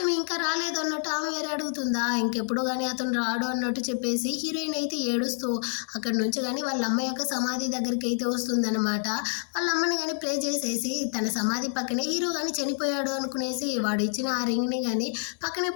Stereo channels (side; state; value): right; silent; 60 dB below the other